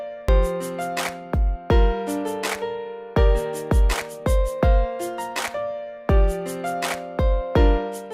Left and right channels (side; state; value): both; identical; correlation 1.00